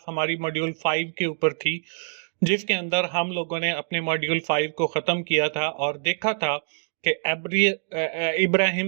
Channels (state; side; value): silent; left; digital silence